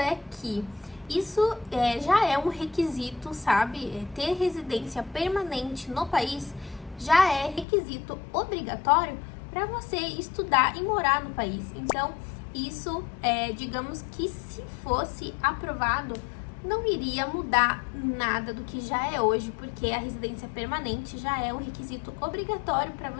que isso já é um requisito, sabe? Ter residência permanente no país já é requisito obrigatório para você estudar e morar no país. Então, isso, digamos que se fosse aprovado, não iria mudar nada do que já é hoje, porque a residência permanente já é um requisito obrigatório para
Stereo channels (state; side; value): drops out; right; at 7.7 s